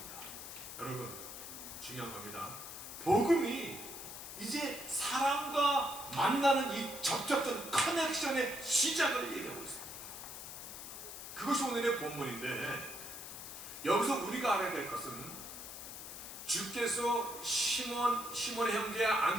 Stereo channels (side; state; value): left; noise; hiss, 10 dB below the sound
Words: 여러분, 중요한 겁니다. 복음이 이제 사람과 만나는 이 접촉점 커넥션의 시작을 얘기하고 있습니다. 그것이 오늘의 본문인데, 여기서 우리가 알아야 될 것은 주께서 시몬의 형제